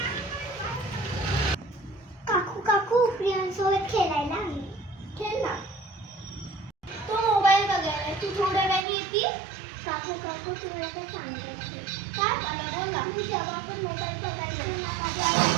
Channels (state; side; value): drops out; left; at 8.8 s